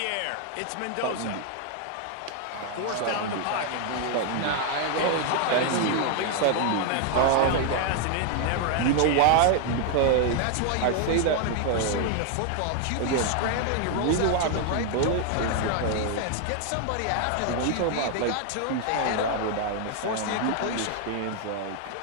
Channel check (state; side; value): different; both; correlation 0.00